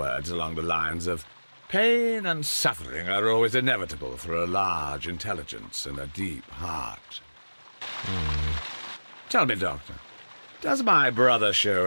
along the lines of pain and suffering are always inevitable for a large intelligence and a deep heart. Tell me, Doctor, does my brother show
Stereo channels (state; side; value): inverted; both; correlation -1.00